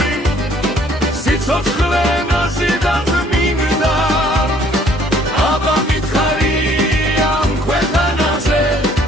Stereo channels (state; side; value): normal; both; correlation 0.60